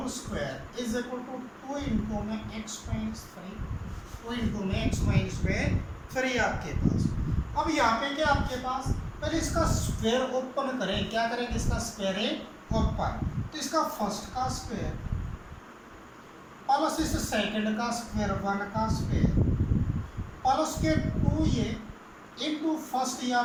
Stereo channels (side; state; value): both; identical; correlation 1.00